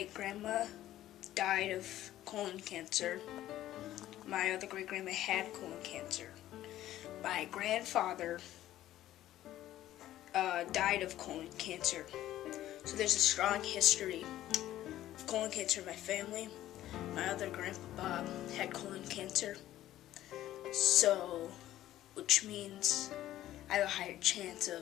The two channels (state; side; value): quieter; right; 13.7 dB